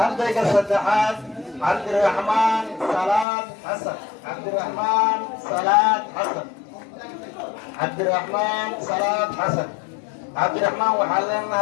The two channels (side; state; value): right; drops out; at 3.2 s